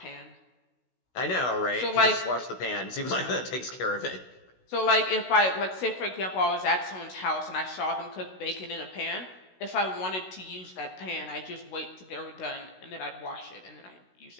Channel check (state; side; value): late; right; 16 ms